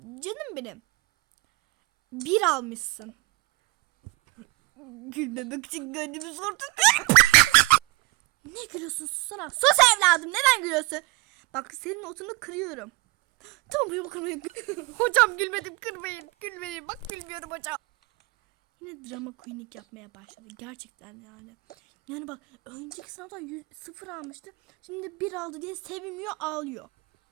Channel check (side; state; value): left; quieter; 23.7 dB